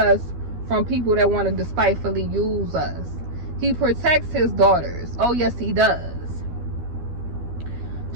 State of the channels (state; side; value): late; left; 12 ms